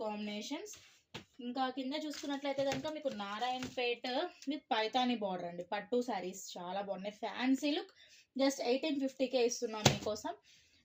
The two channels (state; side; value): identical; both; correlation 1.00